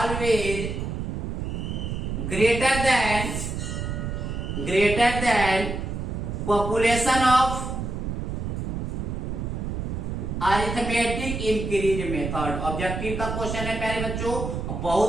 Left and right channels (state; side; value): noise; right; rumble, 3 dB below the sound